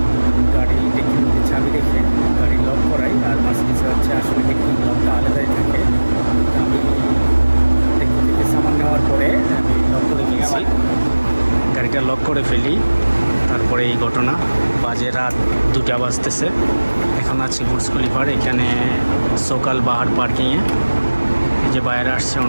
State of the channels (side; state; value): both; inverted; correlation -1.00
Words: গাড়ি ডিকির মধ্যে চাবি রেখে গাড়ি লক করাই, আর মার্সিডিজে হচ্ছে আসলে ডিকির লকটা আলাদাই থাকে। আমি ডিকি থেকে সামান নেওয়ার পরে আমি লক করে ফেলছি, গাড়িটা লক করে ফেলি। তারপরে এই ঘটনা, বাজে রাত 2টা বাজতেছে। এখন আছি বুর্জ খলিফার এখানে সকাল বাহার পার্কিংয়ে। এই যে বাইরে আসছে,